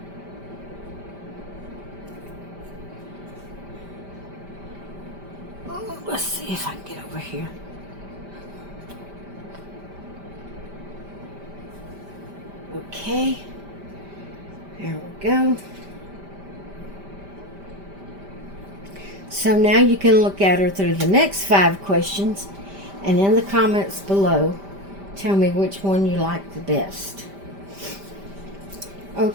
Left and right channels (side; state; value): left; late; 5.1 ms